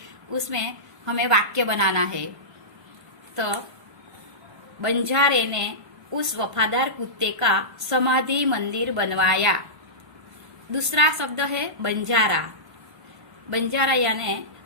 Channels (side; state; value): left; late; 1.2 ms